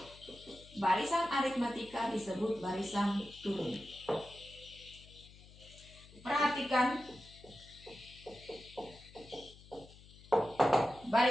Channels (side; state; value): left; noise; hum, 21 dB below the sound